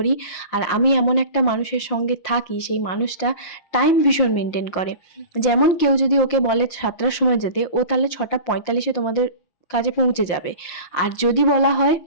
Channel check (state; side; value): late; right; 5.6 ms